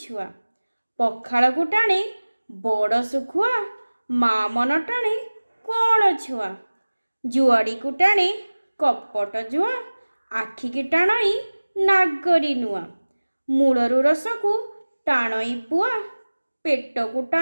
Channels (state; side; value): inverted; both; correlation -1.00